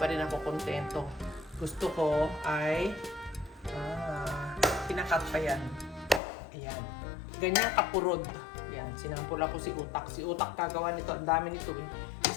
rin ako kontento. Gusto ko ay pinakat pa yan. Ayan. Ganyan kapurod. Ayan. Sinampul ako si Utak. Si Utak kagawa nito. Ang dami nito eh.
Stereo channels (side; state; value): right; drops out; at 6.2 s